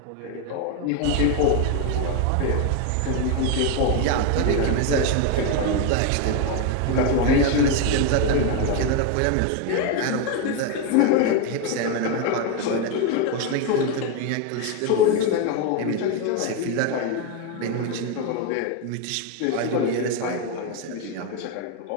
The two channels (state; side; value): different; both; correlation 0.02